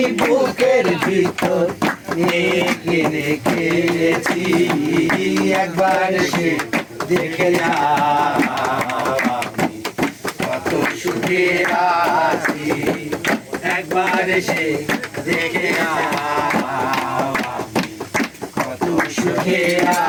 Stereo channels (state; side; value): identical; both; correlation 1.00